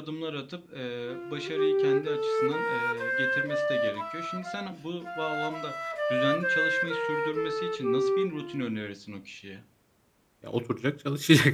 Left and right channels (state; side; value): identical; both; correlation 1.00